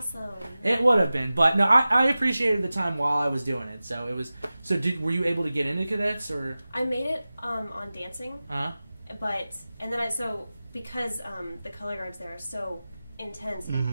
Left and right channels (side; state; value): both; inverted; correlation -0.96